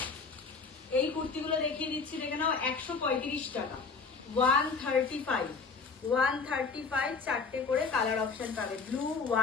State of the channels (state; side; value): quieter; right; 4.7 dB